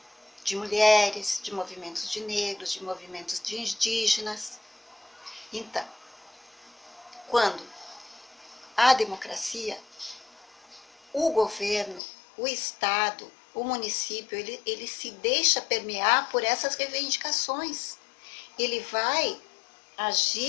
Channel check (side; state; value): right; drops out; at 12.0 s